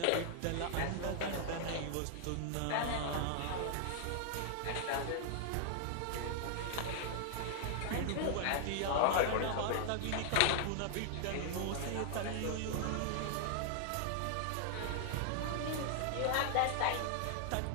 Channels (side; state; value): both; different; correlation 0.00